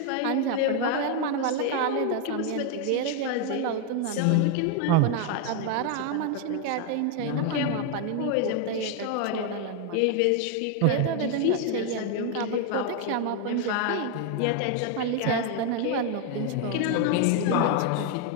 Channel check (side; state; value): both; different; correlation 0.01